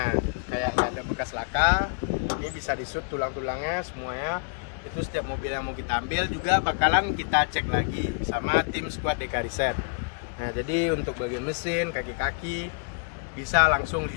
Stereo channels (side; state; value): right; quieter; 37.5 dB